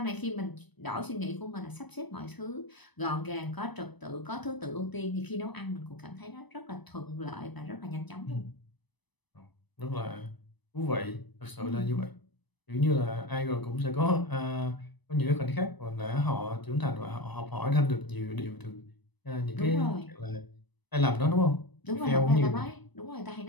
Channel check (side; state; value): right; late; 1.0 ms